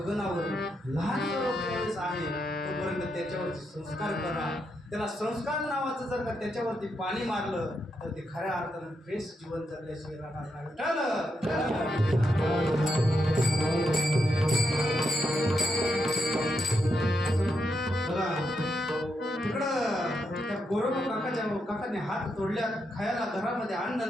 लहान रोप ज्यावेळेस आहे तोपर्यंत त्याच्यावरती संस्कार करा. त्याला संस्कार नावाचं जर का त्याच्यावरती पाणी मारलं तर ते खऱ्या अर्थानं फ्रेश जीवन जगल्याशिवाय राहणार नाही. बघा तिकडं त्या गोरोबा काकाने हात तोडल्या, खायला घरामध्ये अन्न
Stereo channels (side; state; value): both; normal; correlation 0.82